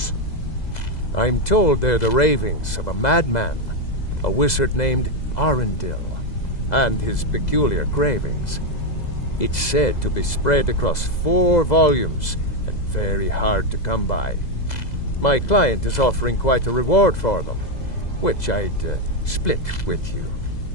I'm told they're the ravings of a madman, a wizard named Arundel, and his peculiar cravings. It's said to be spread across 4 volumes, and very hard to come by. My client is offering quite a reward for them, which I'd split with you.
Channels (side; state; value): right; late; 2.0 ms